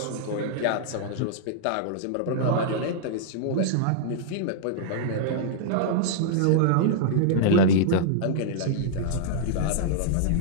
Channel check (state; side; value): different; both; correlation -0.02